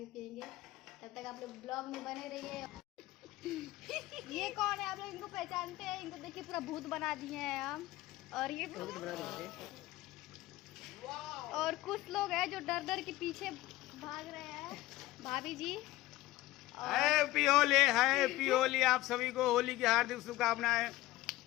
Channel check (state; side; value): quieter; right; 17.2 dB